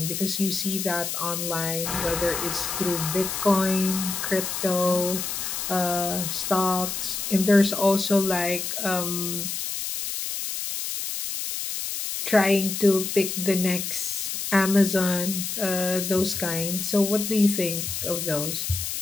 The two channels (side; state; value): left; noise; hiss, 4 dB below the sound